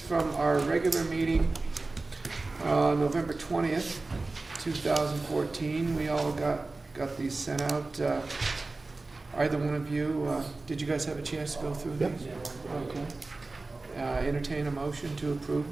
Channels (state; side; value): quieter; left; 3.4 dB